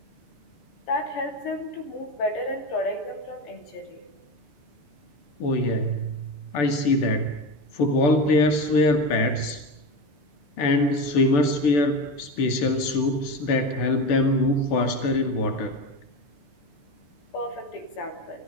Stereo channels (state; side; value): late; right; 6.8 ms